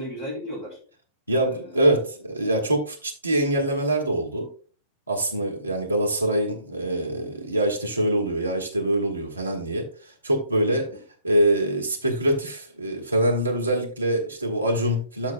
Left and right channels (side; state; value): both; inverted; correlation -0.65